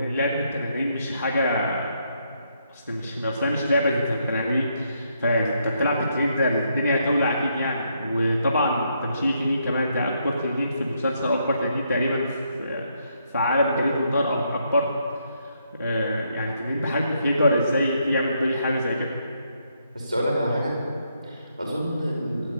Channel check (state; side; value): inverted; both; correlation -0.76